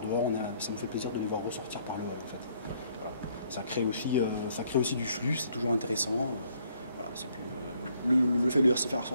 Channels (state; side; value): inverted; both; correlation -0.67